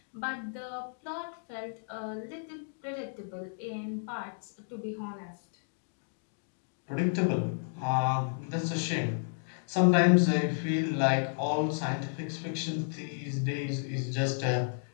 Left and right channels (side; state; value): right; silent; digital silence